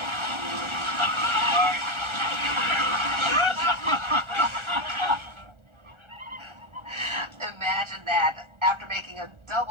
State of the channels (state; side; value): late; left; 1.4 ms